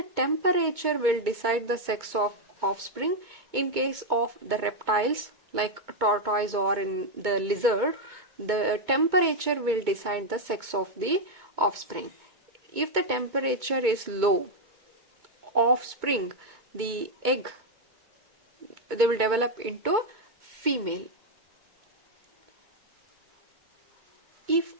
temperature will decide the sex of offspring. In case of the reptiles like tortoise or in the lizard, the temperature will decide the sex of the offspring. If the temperature is low, offspring, the egg, they will develop into female. If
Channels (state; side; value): late; left; 2.2 ms